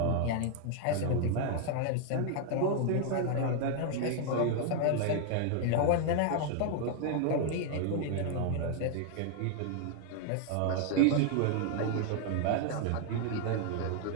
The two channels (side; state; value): both; different; correlation 0.00